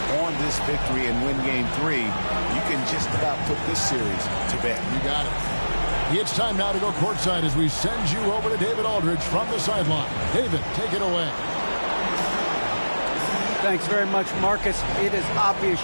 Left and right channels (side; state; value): both; inverted; correlation -1.00